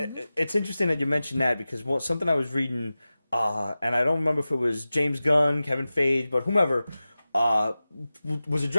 interesting that you mentioned that because something I was reading, and I don't remember if it was James Gunn, Kevin Feige, but whomever, was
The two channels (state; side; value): inverted; both; correlation -0.96